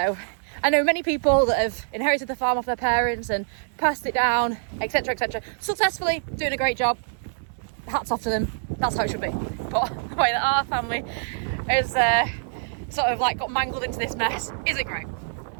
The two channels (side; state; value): left; silent; digital silence